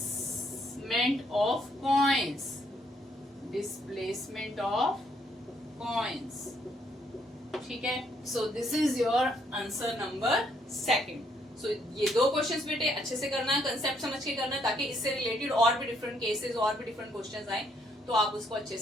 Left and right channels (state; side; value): normal; both; correlation 0.70